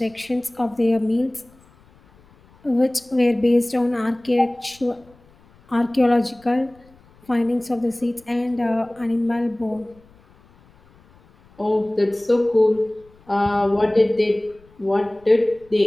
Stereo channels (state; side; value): noise; left; rumble, 29 dB below the sound